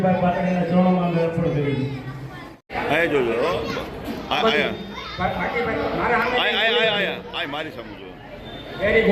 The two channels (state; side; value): identical; both; correlation 1.00